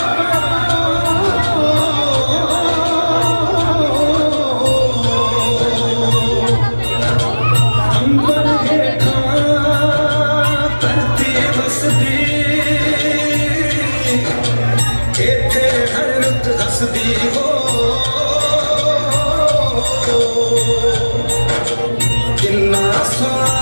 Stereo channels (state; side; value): inverted; both; correlation -1.00